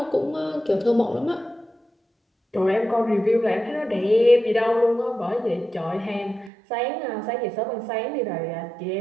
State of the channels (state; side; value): drops out; left; at 6.5 s